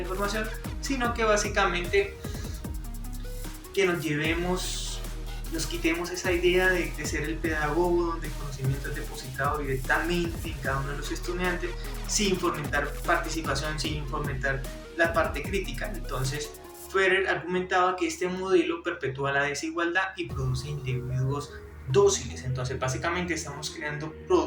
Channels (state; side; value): identical; both; correlation 1.00